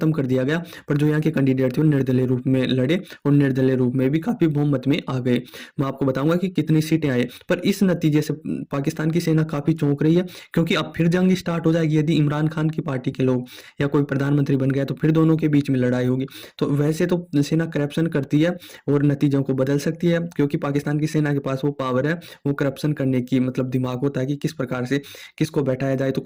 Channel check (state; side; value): identical; both; correlation 1.00